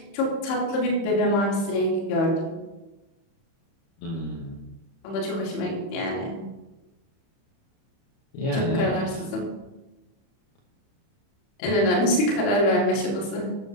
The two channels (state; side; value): late; right; 30 ms